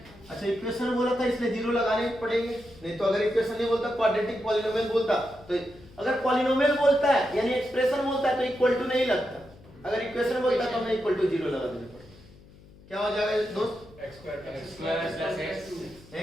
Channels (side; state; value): left; noise; hum, 23 dB below the sound